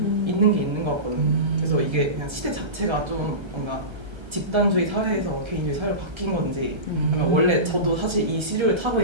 있는 게 있는 것 같거든요. 그래서 이게 그냥 시대 자체가 좀 뭔가 집단주의 사회에서 개인주의 사회로 바뀐 건지 아니면 원래 저도 사실 이 시류를 타고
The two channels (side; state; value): left; late; 1.3 ms